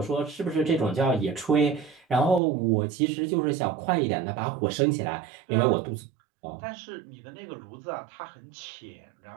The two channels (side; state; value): left; drops out; at 2.4 s